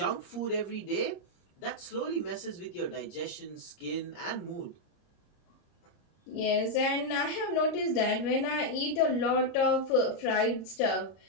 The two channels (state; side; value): late; right; 30 ms